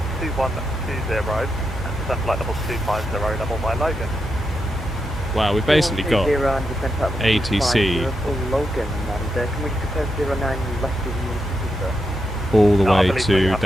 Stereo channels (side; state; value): both; normal; correlation 0.85